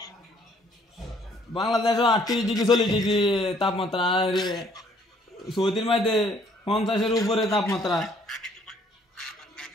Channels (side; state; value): both; normal; correlation 0.63